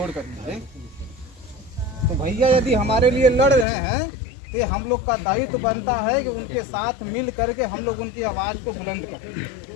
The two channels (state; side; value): drops out; right; at 3.7 s